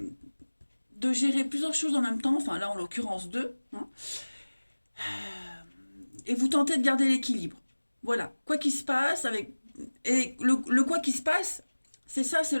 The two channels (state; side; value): inverted; both; correlation -1.00